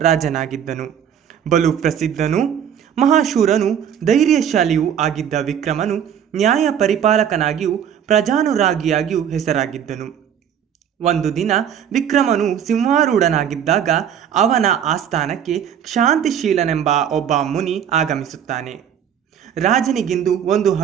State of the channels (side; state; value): left; quieter; 8.9 dB